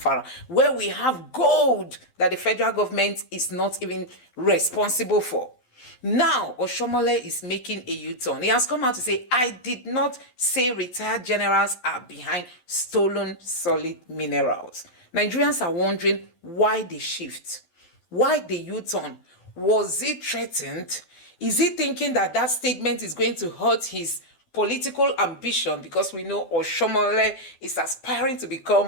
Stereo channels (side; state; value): right; late; 12 ms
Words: where we have gold that the federal government is not even responsible for. Now, Oshiomhole is making a U-turn. He has come out to say, I did not say retired generals are behind stolen solid minerals. Nigerians are wondering why the shift, why the U-turn. Was he threatened? Is he thinking that that statement is going to hurt his political ambition? Because we know Oshiomhole is aspiring to